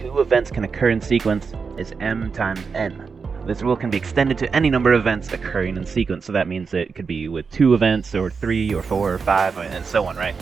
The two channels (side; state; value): left; quieter; 5.3 dB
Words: events can occur in sequence is m times n. This rule can be extended to any number of events occurring in sequence, so that means it could be with 2 events, or 3, or 4, or 5, and so on, right?